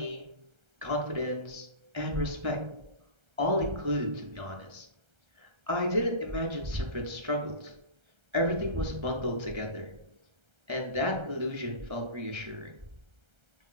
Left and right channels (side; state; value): left; late; 1.3 ms